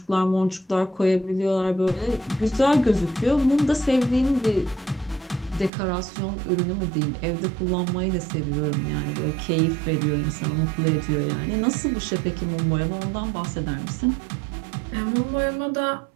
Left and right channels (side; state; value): left; drops out; at 5.7 s